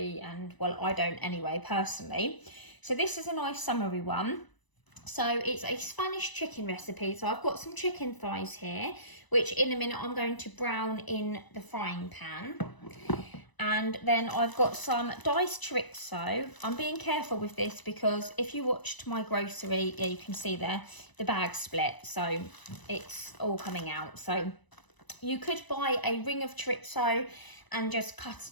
and well, I don't anyway, personally. So this is a nice summery one. So it's a Spanish chicken recipe. So I've got some chicken thighs here, which in a minute I'm going to brown in the frying pan. And then I've got some diced chorizo. I'm being careful with this because if you watched my grocery, yeah, you can see there, the bag split. So it's all coming out. So you could buy a ring of chorizo and just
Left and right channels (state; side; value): late; right; 1.0 ms